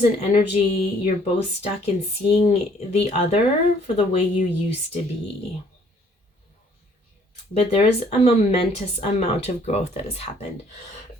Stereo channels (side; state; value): both; normal; correlation 0.61